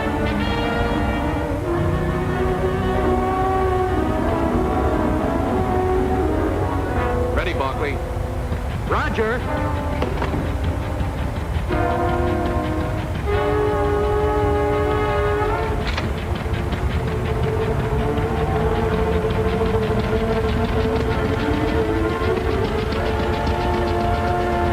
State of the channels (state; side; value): identical; both; correlation 1.00